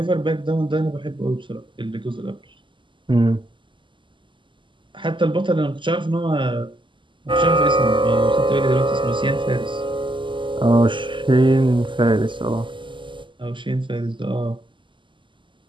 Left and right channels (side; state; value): left; late; 0.24 ms